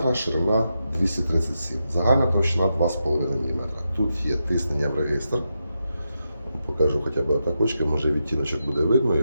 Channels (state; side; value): inverted; both; correlation -0.86